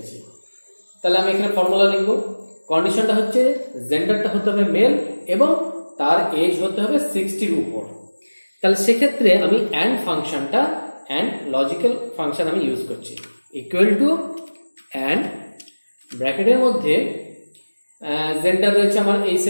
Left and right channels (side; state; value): both; inverted; correlation -1.00